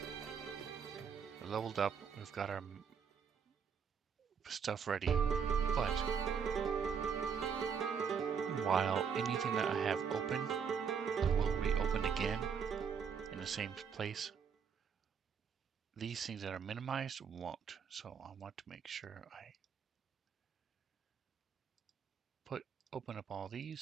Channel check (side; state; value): left; quieter; 6.7 dB